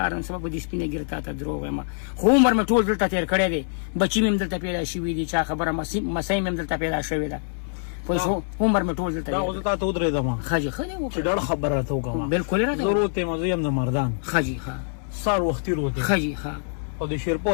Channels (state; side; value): silent; right; 59 dB below the other